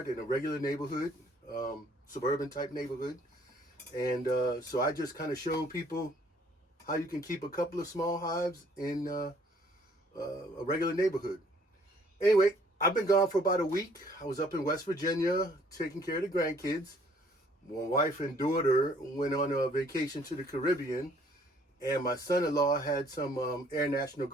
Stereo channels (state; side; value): normal; both; correlation 0.61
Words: in a regular neighborhood, suburban type neighborhood. And so I just kind of show people how you can keep a couple of small hives in a regular neighborhood. Anyway, I've been gone for about a week. I was up in West Virginia taking care of the grandkids. My wife and daughter went on a vacation to the Caribbean, and my son-in-law had some Air National